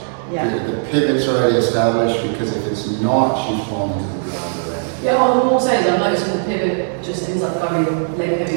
Yeah. The pivot's already established, because if it's not, she's falling to the ground already. Yeah, all I'm saying is I'm noticing the pivot just ends up going leg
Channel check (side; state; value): left; silent; digital silence